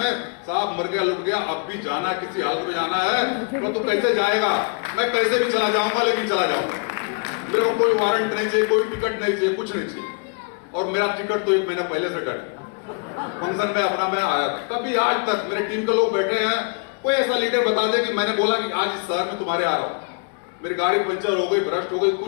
साहब मर गया लुट गया, अब भी जाना, किसी हालत में जाना है तो तू कैसे जाएगा, मैं कैसे भी चला जाऊंगा लेकिन चला जाऊंगा। मेरे को कोई वारंट नहीं चाहिए, कोई टिकट नहीं चाहिए, कुछ नहीं चाहिए। और मेरा टिकट तो 1 महीना पहले से कट, फंक्शन में अपना मैं आया था। कभी आज तक मेरे टीम के लोग बैठे हैं, कोई ऐसा लीडर बता दे कि मैंने बोला कि आज इस शहर में तुम्हारे आ रहा हूं, मेरी गाड़ी पंचर हो गई, भ्रष्ट हो गई,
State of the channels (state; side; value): quieter; right; 35.2 dB